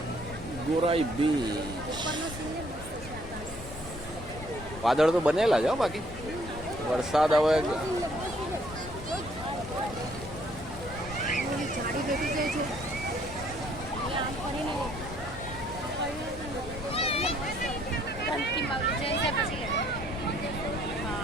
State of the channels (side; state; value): left; noise; rumble, 13 dB below the sound